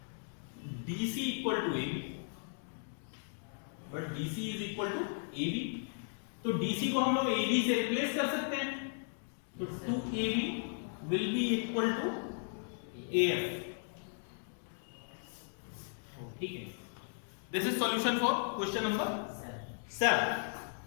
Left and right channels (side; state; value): right; silent; digital silence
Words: DC equal to AB, but DC is equal to AB, तो DC को हम लोग AB से रिप्लेस कर सकते हैं, तो 2AB will be equal to AF। ठीक है, this is solution for question number 7।